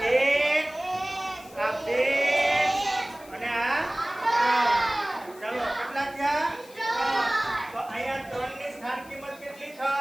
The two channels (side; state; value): left; noise; hiss, 22 dB below the sound